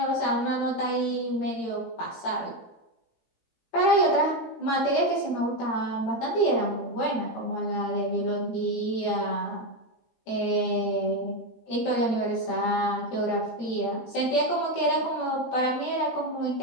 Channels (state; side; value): late; right; 17 ms